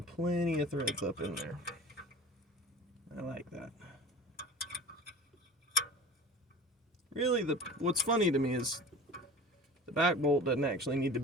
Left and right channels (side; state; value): both; normal; correlation 0.39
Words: plenty of threads up in there. I like that. Really, what's funny to me is the back bolt doesn't actually need to